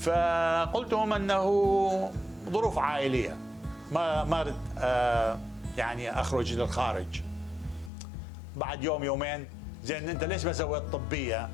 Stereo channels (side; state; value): right; drops out; at 7.9 s